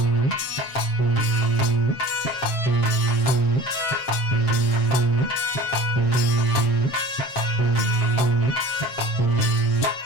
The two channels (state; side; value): late; right; 7.5 ms